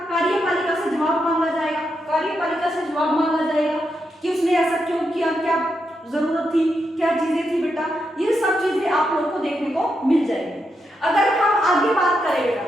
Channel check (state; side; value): normal; both; correlation 0.83